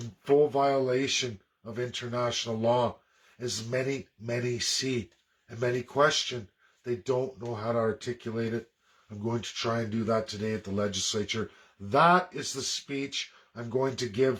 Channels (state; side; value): identical; both; correlation 1.00